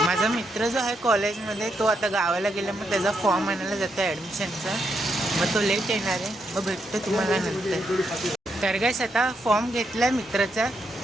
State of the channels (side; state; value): both; normal; correlation 0.80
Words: माझा मित्र जो आहे कॉलेजमध्ये तो आता गावाला गेला. मग त्याचा फॉर्म आणायला जातो आहे ॲडमिशनचा. मग तो लेट येणार आहे. मग भेटतो तुम्हाला नंतर. तर गाईस आता फॉर्म घेतला आहे मित्राचा.